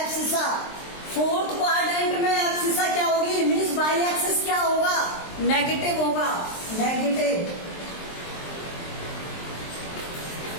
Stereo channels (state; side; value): late; right; 23 ms